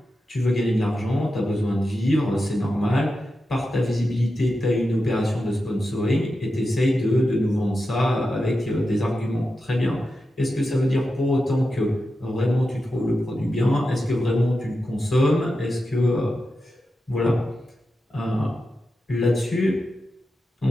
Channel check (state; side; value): normal; both; correlation 0.90